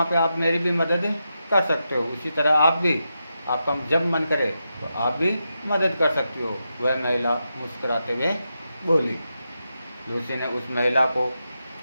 पे आप मेरी भी मदद कर सकते हो। उसी तरह आप भी, आपका जब मन करे तो आप भी मदद कर सकती हो। वह महिला मुस्कुराते हुए बोली। लूसी ने उस महिला को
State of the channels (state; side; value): inverted; both; correlation -0.87